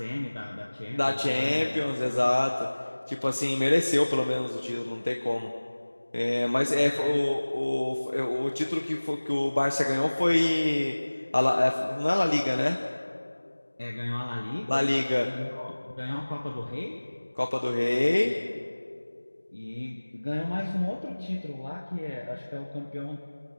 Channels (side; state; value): both; inverted; correlation -1.00